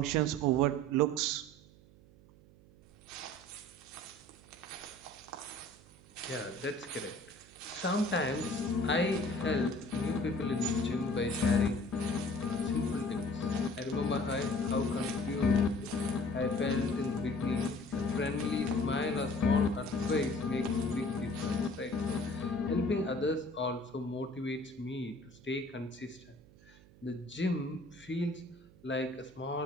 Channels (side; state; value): right; noise; hum, 24 dB below the sound